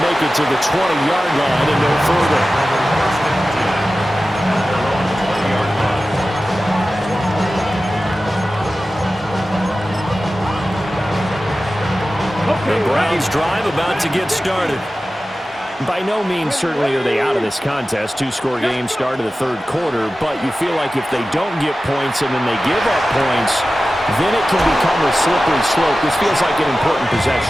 it to the 20-yard line and no further. The Browns drive about to get started. By no means certainly are they out of this contest. Two-score game start of the third quarter, but you feel like if they don't get points and then they give up points, then it can become a slippery slope. This feels like an important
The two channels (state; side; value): normal; both; correlation 0.95